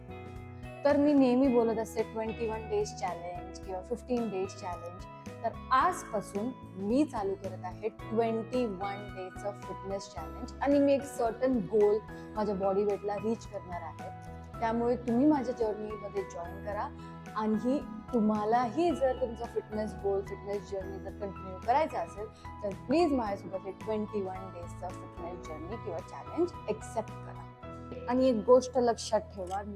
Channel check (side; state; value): both; identical; correlation 1.00